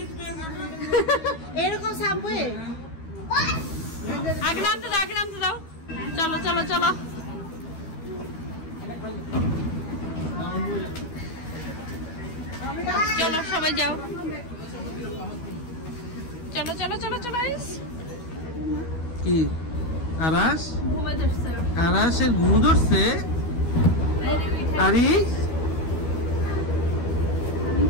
এরকম সাবওয়ে আগে নামতে দাও, আগে নামতে দাও। চলো চলো চলো। চলো সবাই যাও। চলো চলো চলো চলো। কি আরাস? ঘুমে ধরছে। আরাসের ঘুম ধরছে? আরে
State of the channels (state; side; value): late; right; 12 ms